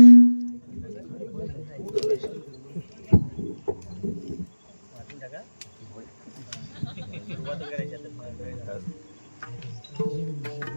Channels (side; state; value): both; inverted; correlation -1.00